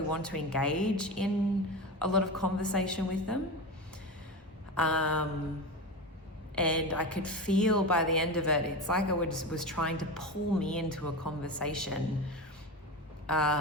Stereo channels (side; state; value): both; normal; correlation 0.23